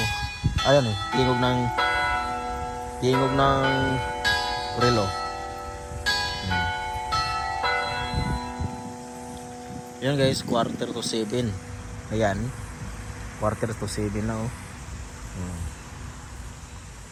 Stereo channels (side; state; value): both; identical; correlation 1.00